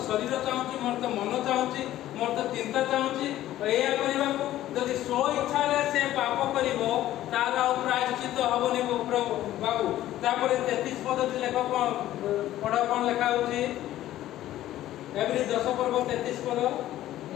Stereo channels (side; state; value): right; quieter; 13.8 dB